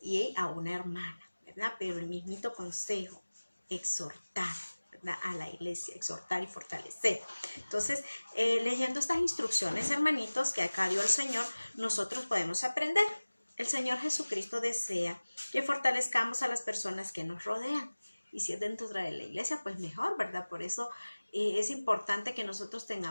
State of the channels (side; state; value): both; inverted; correlation -1.00